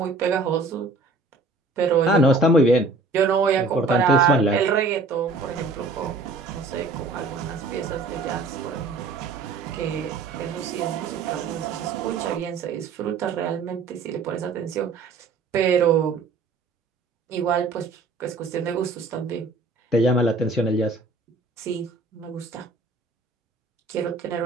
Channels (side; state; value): left; quieter; 3.7 dB